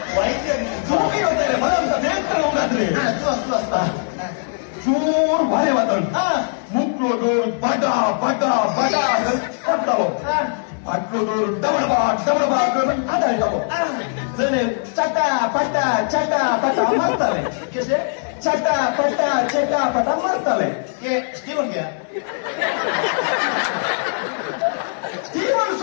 ವೈದ್ಯ ಜೋಗಿ ಹೋಗ್ತಾರೆ ಬರಂತ ದೇವಸ್ಥಾನ ಹೋಗಾದ್ರೆ ಜೋರ್ ಭಾರಿ ಮಾತಾಡು ಮುಕ್ಳೋದೋರು ಬಡ ಬಡ ಬಡ ಕೊಡ್ತಾವ ಅಟ್ಲೋದೋರು ಡಬಡಬಾ ಡಬಡಬಾ ಅದಾಯ್ತಾವ ಜನ ಚಟ ಪಟ ಚಟ ಪಟ ಮಾಡ್ತಾರೆ ಚಟ ಪಟ ಚಟ ಪಟ ಮಾಡ್ತಾರೆ ಸ್ಟೀವನ್ ಗ್ಯಾ ಸ್ಟೀವನ್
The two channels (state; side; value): silent; right; digital silence